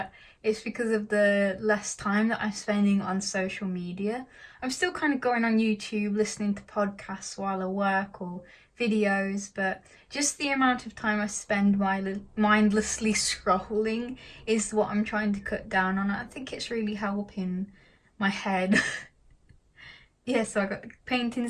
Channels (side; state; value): both; identical; correlation 1.00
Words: it's because of the less time that I'm spending on social media. I'm still kind of going on YouTube, listening to podcasts while I work or videos, but just the amount of time I spend mindlessly scrolling is what I'm trying to cut down on. I think it's really helping my head. Yeah, so I got the